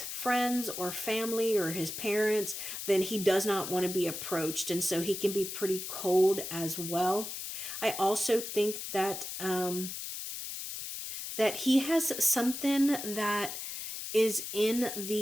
friends or family or his parents, then he does not want to be approached. And so he can be pretty cold as well. I also think that that he has something that is in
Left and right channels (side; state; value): left; noise; hiss, 6 dB below the sound